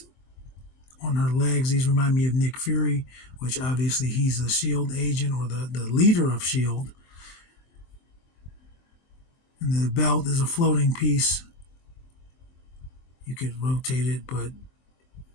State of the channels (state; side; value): late; right; 23 ms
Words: on her legs. These remind me of Nick Fury, which obviously he's a SHIELD agent or the leader of SHIELD. And the belt is a floating piece. You could rotate it, but